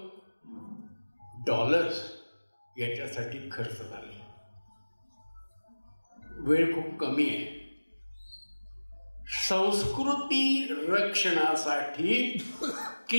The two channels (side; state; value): both; inverted; correlation -1.00